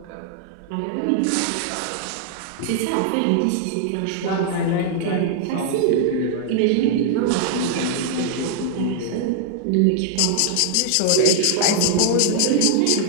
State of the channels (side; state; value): both; different; correlation 0.00